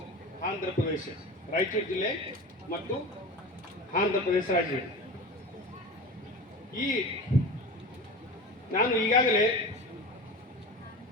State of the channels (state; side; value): normal; both; correlation 0.31